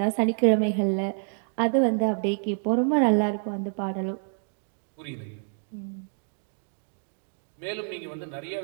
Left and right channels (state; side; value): silent; left; 60 dB below the other